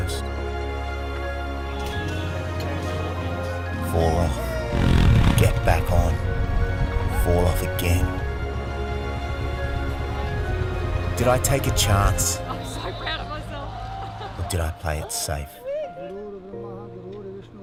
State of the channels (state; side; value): identical; both; correlation 1.00